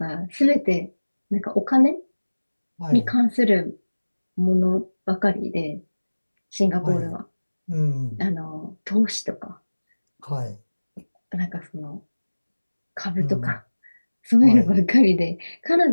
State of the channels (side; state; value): both; inverted; correlation -1.00